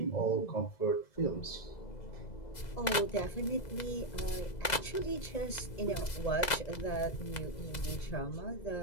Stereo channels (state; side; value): late; right; 2.0 ms